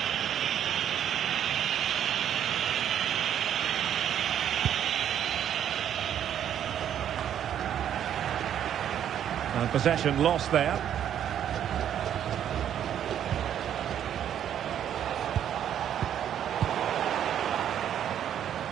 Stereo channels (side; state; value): left; quieter; 9.9 dB